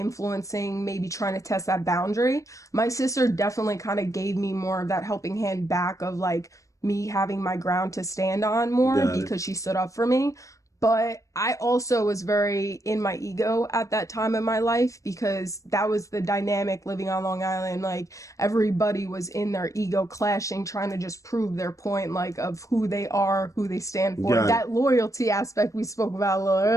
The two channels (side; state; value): right; late; 0.16 ms